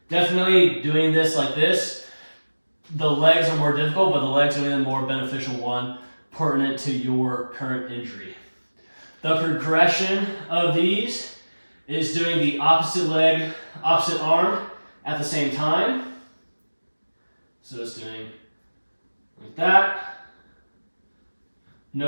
Definitely doing this like this. The legs are more difficult, but the legs are the more beneficial one pertinent to your current injury. The progression of these is doing the opposite leg, opposite arm at the same time. So it's doing like that.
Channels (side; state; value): both; inverted; correlation -1.00